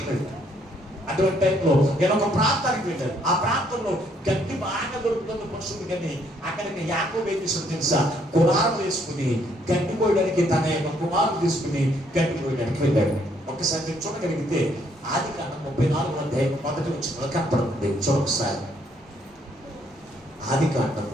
అటువంటి టైంలో నేను ఒక ప్రాంతానికి వెళ్ళాను. ఆ ప్రాంతంలో గడ్డి బాగా దొరుకుతుంది పశువులు, కానీ అక్కడికి యాకోబు ఏం చేసాడు తెలుసా? కులారం వేసుకుని గడ్డి కోయడానికి తన యొక్క కుమారుడు తీసుకుని గడ్డి కోయడానికి వెళ్ళాడు. ఒక్కసారి మీరు చూడగలిగితే ఆదికాండం 34వ అధ్యాయం మొదటి వచనంలో కనపడుతుంది. చూడొకసారి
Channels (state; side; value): normal; both; correlation 0.68